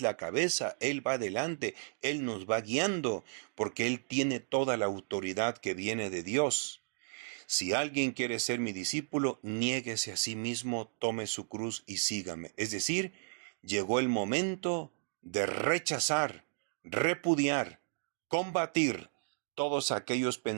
cabeza, Él va adelante, Él nos va guiando, porque Él tiene toda la autoridad que viene de Dios. Si alguien quiere ser mi discípulo, niéguese a sí mismo, tome su cruz y sígame. Es decir, llegó el momento de rechazar, repudiar, combatir todos aquellos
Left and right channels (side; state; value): left; silent; digital silence